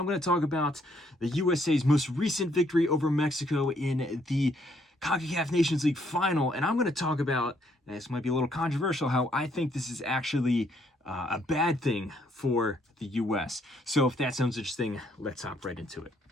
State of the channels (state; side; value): normal; both; correlation 0.70